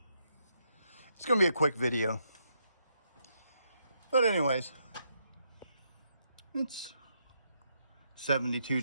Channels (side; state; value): both; inverted; correlation -0.78